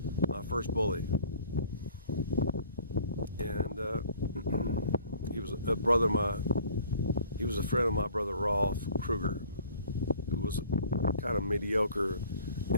My first bully. And he was a brother of my, he was a friend of my brother Rolf Kruger, who was a kind of mediocre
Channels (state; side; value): inverted; both; correlation -0.51